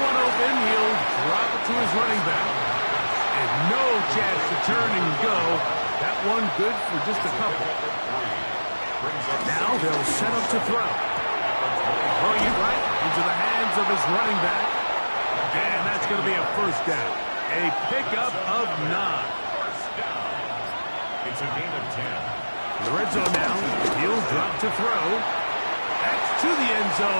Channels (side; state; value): both; inverted; correlation -1.00